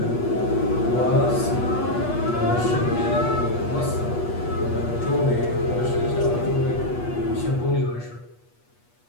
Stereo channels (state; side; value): late; right; 8.3 ms